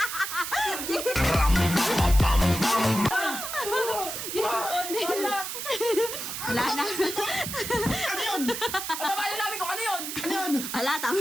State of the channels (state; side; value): noise; right; hiss, 6 dB below the sound